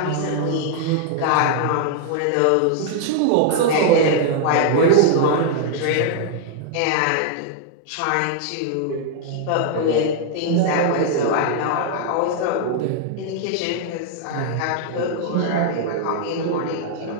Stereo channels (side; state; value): both; different; correlation 0.00